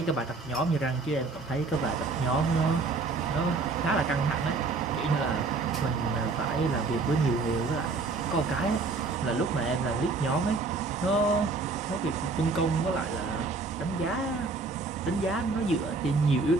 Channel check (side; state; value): left; quieter; 3.9 dB